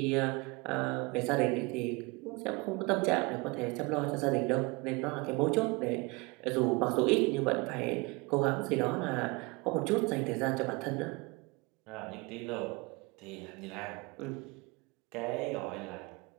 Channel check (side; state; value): left; quieter; 26.2 dB